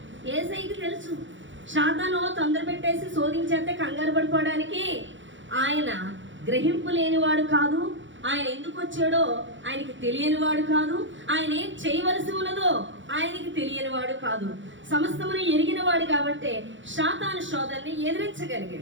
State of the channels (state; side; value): late; left; 0.55 ms